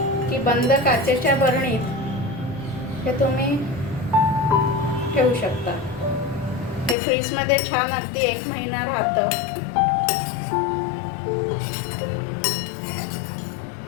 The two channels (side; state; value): right; drops out; at 7.0 s